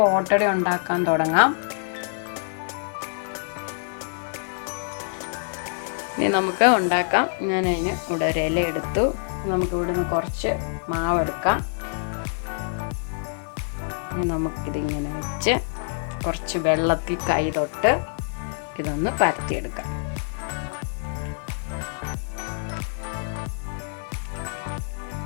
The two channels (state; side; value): silent; right; digital silence